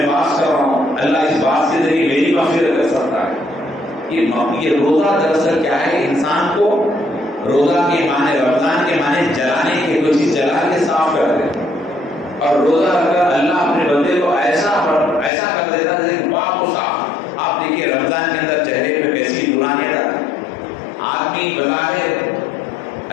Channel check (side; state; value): right; drops out; at 15.3 s